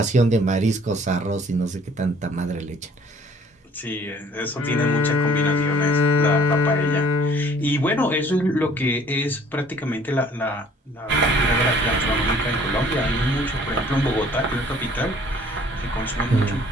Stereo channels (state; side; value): normal; both; correlation 0.56